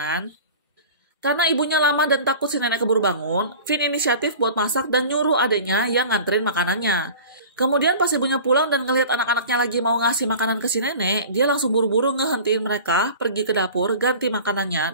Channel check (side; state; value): both; inverted; correlation -0.39